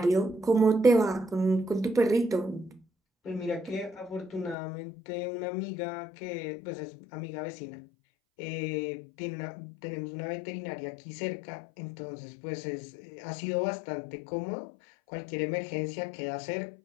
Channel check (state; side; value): drops out; right; at 4.5 s